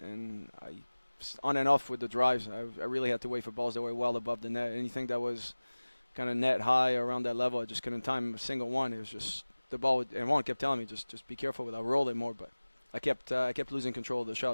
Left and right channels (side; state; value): both; inverted; correlation -1.00